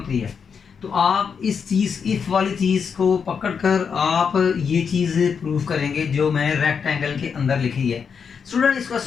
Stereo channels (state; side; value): quieter; right; 6.4 dB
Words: है। तो आप इस चीज़ इफ़ वाली चीज़ को पकड़कर आप ये चीज़ प्रूव करेंगे जो मैं रेक्टेंगल के अंदर लिखी है। स्टूडेंट इस